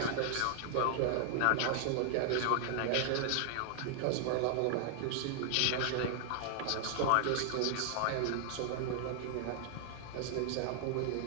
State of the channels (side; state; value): both; different; correlation 0.00